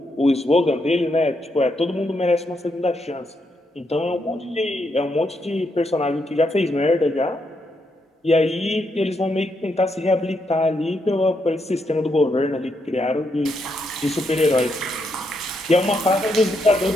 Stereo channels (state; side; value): normal; both; correlation 0.79